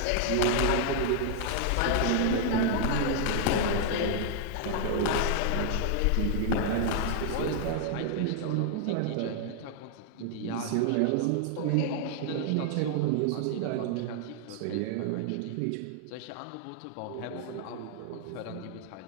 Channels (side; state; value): both; different; correlation 0.00